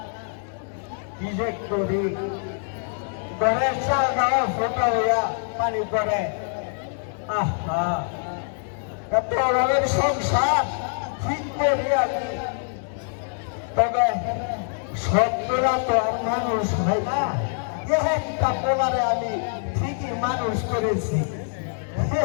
কি যে করি ঘরের চালটাও ফোটা হইয়া পানি পড়ে আহা এত অভাবের সংসার ঠিক করি আমি তবে সত্যরা তো আর মানুষ হয় না একটা পোলারে আমি ঠিকই মানুষ করেছি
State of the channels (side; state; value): right; silent; 62 dB below the other